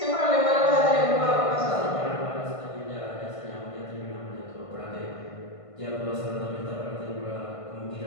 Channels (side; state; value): right; late; 1.5 ms